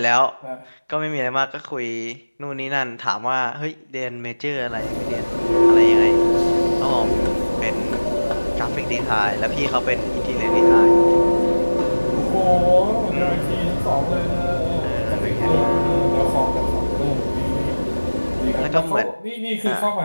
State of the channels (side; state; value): both; inverted; correlation -1.00